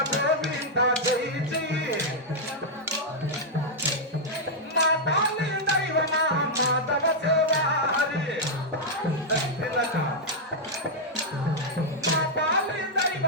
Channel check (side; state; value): both; normal; correlation -0.05